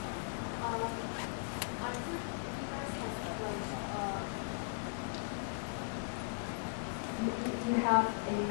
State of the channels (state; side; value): silent; right; 52 dB below the other